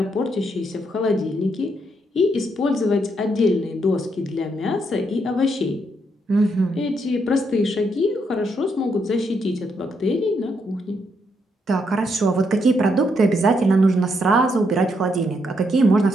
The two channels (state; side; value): normal; both; correlation 0.77